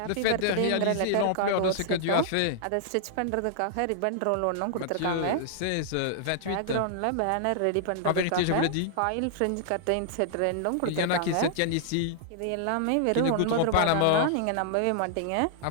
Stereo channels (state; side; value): different; both; correlation -0.01